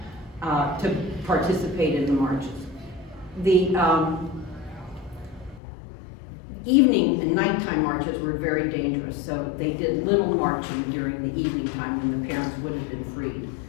to participate in the marches. The evening and nighttime marches were very dangerous, so they did little marching during the evening time when the parents would have been freed.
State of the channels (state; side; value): drops out; right; at 5.6 s